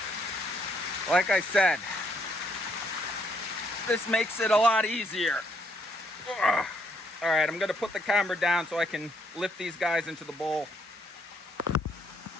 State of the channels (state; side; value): normal; both; correlation 0.71